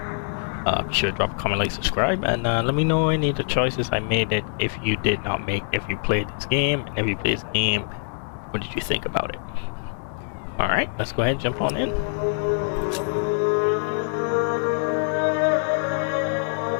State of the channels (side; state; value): right; silent; digital silence